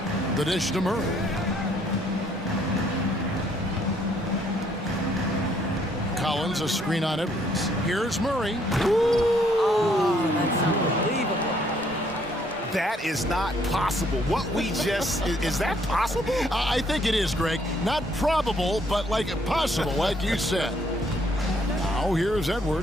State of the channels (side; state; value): both; normal; correlation 0.67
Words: The dish to Murray. Collins, a screen on Edwards. Here's Murray. Oh, that's unbelievable. That is not possible. What we just, is that possible? I think it is, Greg. Not probable, but like possible, like you said. Now here's